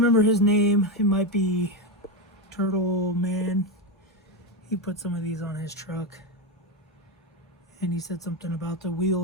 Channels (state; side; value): normal; both; correlation 0.10